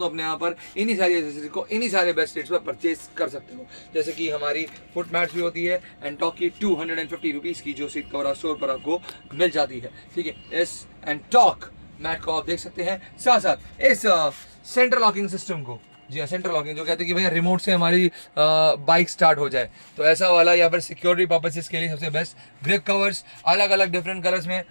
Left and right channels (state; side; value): inverted; both; correlation -1.00